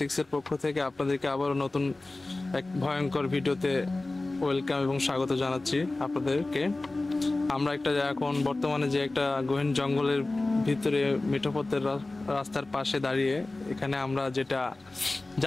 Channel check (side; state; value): right; quieter; 3.0 dB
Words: এর পক্ষ থেকে আপনাদেরকে আবারও নতুন এক ভয়ঙ্কর ভিডিওতে ওয়েলকাম এবং স্বাগত জানাচ্ছি আপনাদেরকে। আমরা এখন বর্তমানে যে একটা গহীন জঙ্গলের ভিতরে মিঠোপথের রাস্তার পাশে দাঁড়িয়ে এখানে আমরা যেটা